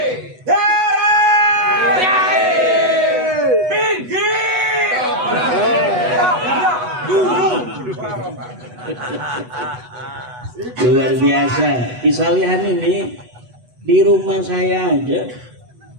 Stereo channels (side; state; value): left; late; 8.1 ms